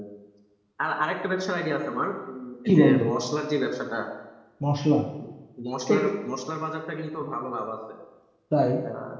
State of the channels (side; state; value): both; identical; correlation 1.00